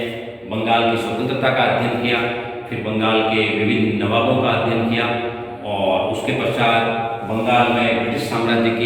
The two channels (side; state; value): both; identical; correlation 1.00